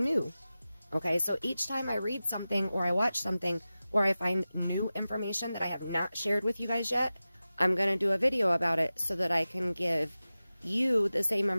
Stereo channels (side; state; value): both; inverted; correlation -0.95